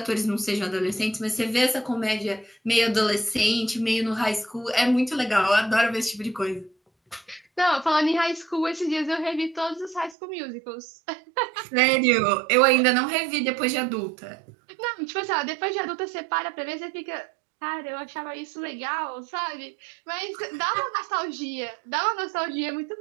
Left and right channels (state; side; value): drops out; left; at 10.2 s